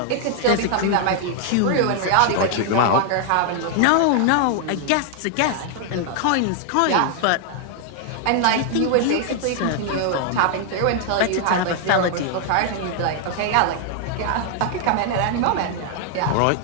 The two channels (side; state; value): both; different; correlation 0.00